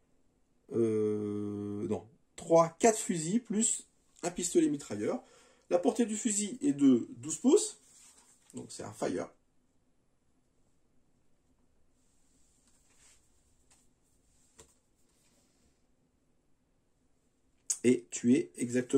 4 fusils, plus un pistolet mitrailleur. La portée du fusil est de 12 pouces. Donc c'est un Fire. Et tu es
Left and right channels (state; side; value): identical; both; correlation 1.00